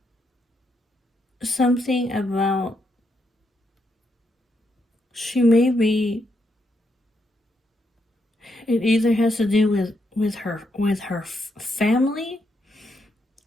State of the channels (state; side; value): normal; both; correlation 0.79